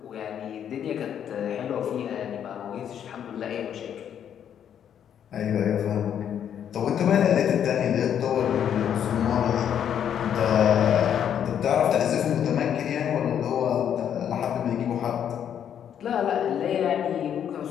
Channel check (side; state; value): right; quieter; 9.2 dB